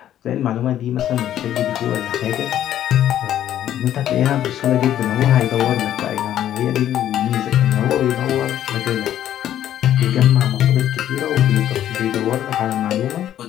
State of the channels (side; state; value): right; quieter; 11.4 dB